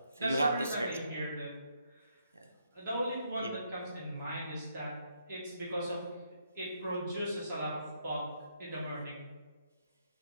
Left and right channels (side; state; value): both; inverted; correlation -0.75